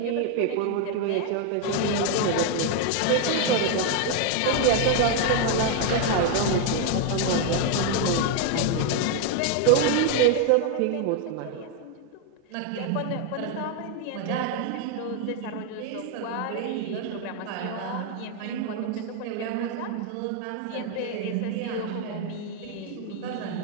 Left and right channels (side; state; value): both; different; correlation 0.01